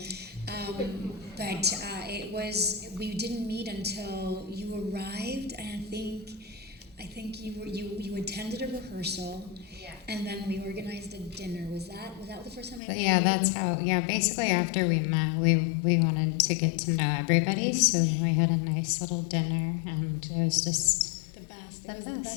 But we didn't meet until you arrived, and I think you attended a rehearsal. And then we organized a dinner. Was that the first time I met you? Yeah, that's how. Yeah, basically after we met, we wanted to get to know everybody, so we had a nice little dinner, and it was just the best.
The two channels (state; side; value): drops out; right; at 12.8 s